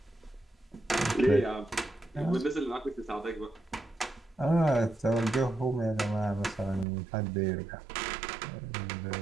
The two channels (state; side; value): drops out; left; at 6.9 s